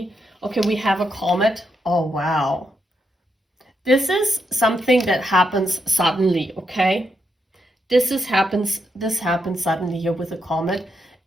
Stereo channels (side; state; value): both; normal; correlation 0.81